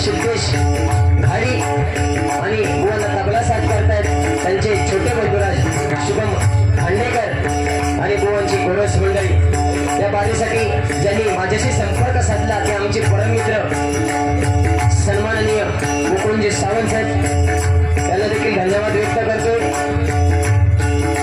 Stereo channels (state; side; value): identical; both; correlation 1.00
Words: सिद्धेश घाडी आणि बुवांना तबला साथ करतात त्यांचे छोटे बंधुराज शुभम खांडेकर आणि बुवांची गोरस मंडळी। या बारीसाठी ज्यांनी माझ्याशी संपर्क साधला ते आमचे परम मित्र सन्माननीय मुकुंदजी सावंत साहेब त्यांना देखील धन्यवाद व्यक्त करतोय।